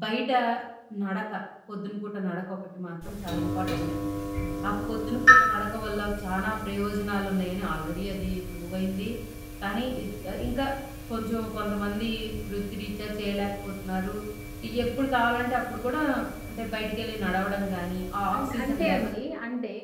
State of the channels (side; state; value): both; identical; correlation 1.00